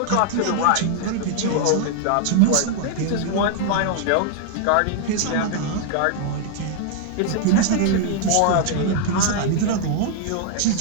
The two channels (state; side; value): different; both; correlation 0.00